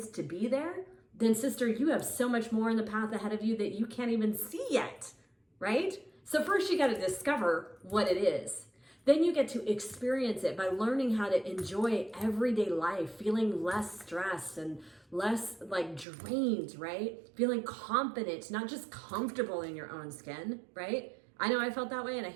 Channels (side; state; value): left; drops out; at 16.1 s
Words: to be there, then sister, you have so much more in the path ahead of you that you can't even see yet, right? So first you got to discover what it is. Then you get to experience it by learning how to enjoy everyday life, feeling less stressed and less drained, right? Feeling confident, not just comfortable in your own skin, right? I know I felt that way and I